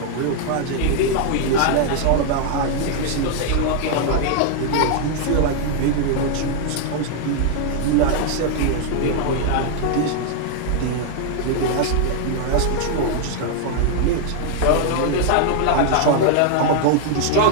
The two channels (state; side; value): different; both; correlation -0.01